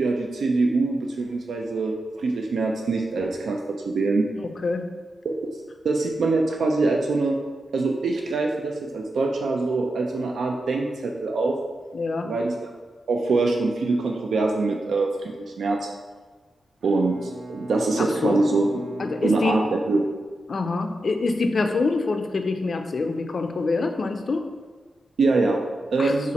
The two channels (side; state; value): both; normal; correlation 0.88